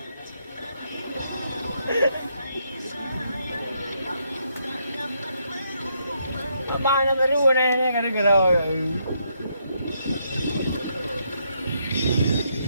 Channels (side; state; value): both; inverted; correlation -0.76